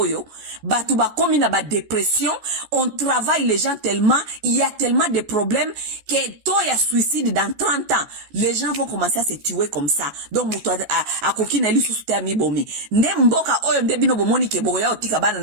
batu bakomi na ba dépression, on travaille les gens tellement, il y a tellement de problèmes que taux ya suicide dans 30 ans les gens vont commencer à se tuer comme ça. Donc muto akoki na lisusu te mibomi nde mboka oyo nde bino bomoni ke boya otika bana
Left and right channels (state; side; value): late; left; 14 ms